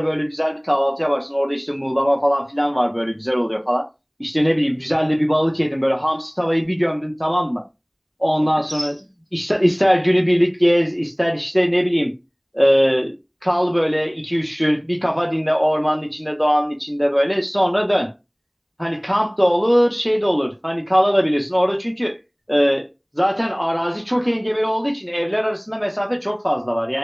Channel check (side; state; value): both; identical; correlation 1.00